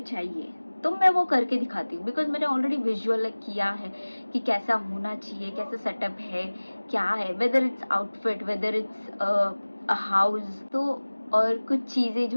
चाहिए, तो मैं वो करके दिखाती हूँ। बिकॉज मैंने ऑलरेडी विजुअल किया है कि कैसा होना चाहिए, कैसा सेटअप है, क्या है, whether it's outfit, whether it's a house, तो और कुछ चीज़ें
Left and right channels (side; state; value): both; inverted; correlation -1.00